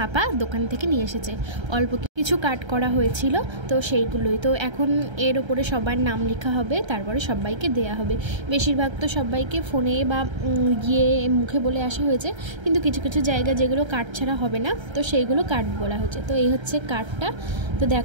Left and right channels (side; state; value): left; late; 1.3 ms